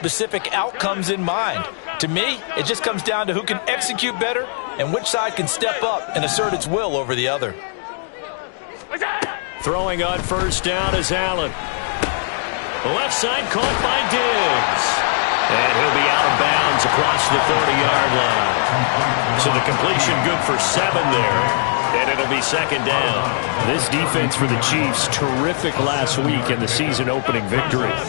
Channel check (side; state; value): right; silent; digital silence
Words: outcomes in mind. To me, it just comes down to who can execute better and which side can step up and assert its will over the other. Throwing on 1st down is Allen. The left side caught by Diggs. And he'll be out of bounds across the 30-yard line. So the completion good for 7 there. And it'll be second down. This defense for the Chiefs, terrific last week in the season-opening victory.